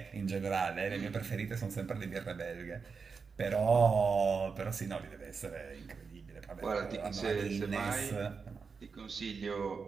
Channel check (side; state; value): left; quieter; 5.3 dB